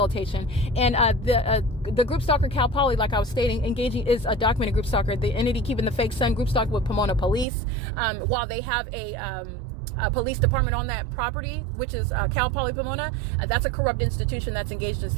And the group stalker Cal Poly, like I was stating, engaging is a documented group stalker. The entity keeping the fake sun group stalking with Pomona police, while they have a police department on that property, which is Cal Poly Pomona. That's a corrupt institution that's engaged in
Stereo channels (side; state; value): left; drops out; at 7.5 s